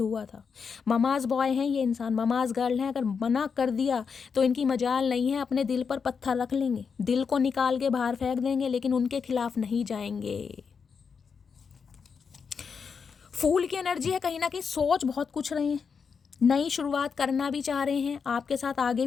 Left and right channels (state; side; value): quieter; right; 5.9 dB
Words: हुआ था। ममाज बॉय हैं ये इंसान, ममाज गर्ल हैं। अगर मना कर दिया तो इनकी मजाल नहीं है, अपने दिल पर पत्थर रख लेंगे, दिल को निकाल के बाहर फेंक देंगे, लेकिन उनके खिलाफ नहीं जाएंगे। फूल की एनर्जी है, कहीं ना कहीं सोच बहुत कुछ रहे हैं, नई शुरुआत करना भी चाह रहे हैं, आपके साथ आगे